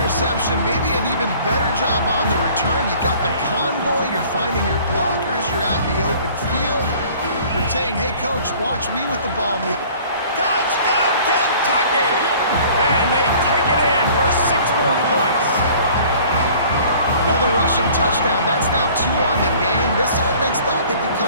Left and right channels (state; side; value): inverted; both; correlation -0.51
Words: maybe an even better job on the return. You got the convoy, you're finding your blockers, you're out in the open field. You're saying, hey, coach, watch me with the ball. Touchdown, Kentucky! And they take it in for 6 more points. Another rushing touchdown. That's now 2 on the game. This offense thought they could